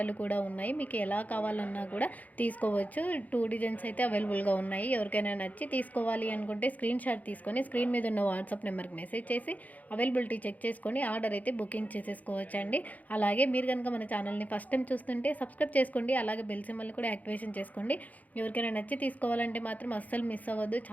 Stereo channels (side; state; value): right; late; 0.077 ms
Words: కూడా ఉన్నాయి. మీకు ఎలా కావాలన్నా కూడా తీసుకోవచ్చు. 2 డిజైన్స్ అయితే అవైలబుల్‌గా ఉన్నాయి. ఎవరికైనా నచ్చి తీసుకోవాలి అనుకుంటే స్క్రీన్ షాట్ తీసుకొని స్క్రీన్ మీద ఉన్న వాట్సాప్ నెంబర్‌కి మెసేజ్ చేసి అవైలబిలిటీ చెక్ చేసుకొని ఆర్డర్ అయితే బుకింగ్ చేసేసుకోవచ్చండి. అలాగే మీరు గనుక మన ఛానల్‌ని ఫస్ట్ టైమ్ చూస్తుంటే సబ్స్క్రైబ్ చేసుకోండి. అలాగే బెల్ సింబల్‌ని కూడా యాక్టివేషన్ చేసుకోండి. ఎవరికైనా నచ్చి తీసుకోవాలంటే మాత్రం అస్సలు మిస్ అవ్వద్దు.